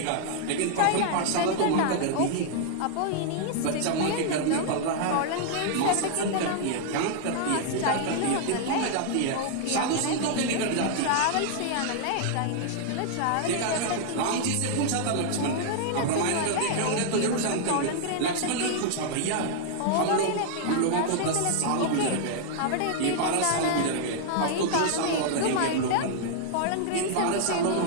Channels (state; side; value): different; both; correlation -0.01